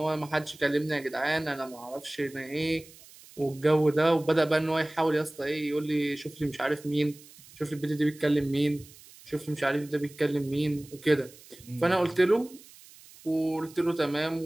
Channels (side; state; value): right; noise; hiss, 22 dB below the sound